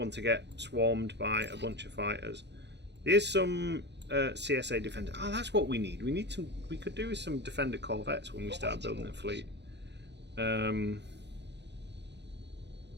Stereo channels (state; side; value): late; left; 0.50 ms